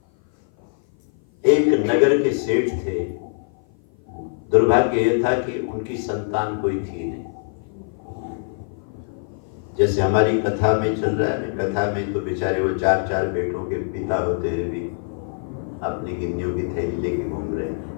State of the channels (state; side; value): silent; right; 55 dB below the other